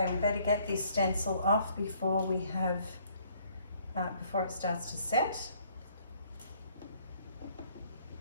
we better get this stencil off before we have, before it starts to set.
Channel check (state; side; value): inverted; both; correlation -0.63